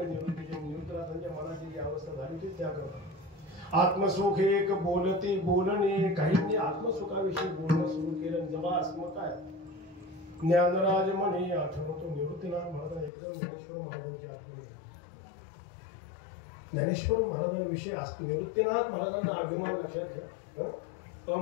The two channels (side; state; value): right; drops out; at 13.1 s